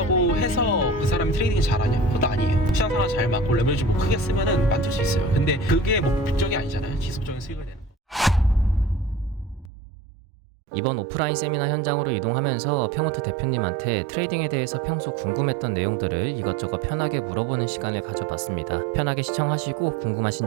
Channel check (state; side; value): drops out; left; at 9.7 s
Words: 해서 그 사람이 트레이딩 잘하냐? 그것도 아니에요. 시장 상황 잘 맞고 레버리지 뭐 크게 쓰면은 만들 수 있어요. 근데 그게 목적이 아니잖아요. 지속적인 수익을 내는. 이번 오프라인 세미나 현장으로 이동하면서 평호트 대표님한테 트레이딩에 대해서 평소 궁금했던 내용들을 이것저것 편하게 물어보는 시간을 가져봤습니다. 편하게 시청하시고 궁금하신